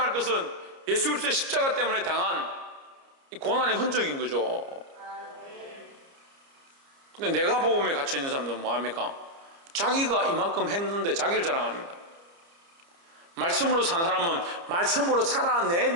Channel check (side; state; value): left; late; 29 ms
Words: 것은 예수 그리스도의 십자가 때문에 당한 이 고난의 흔적인 거죠. 근데 내가 복음에 갇혀있는 사람들은 뭐합니까? 자기가 이만큼 했는데 자기를 자랑합니다. 말씀으로 산 사람은 말씀으로